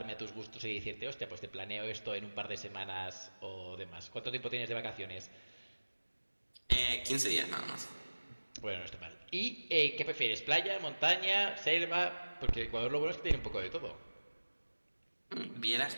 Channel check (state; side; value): inverted; both; correlation -1.00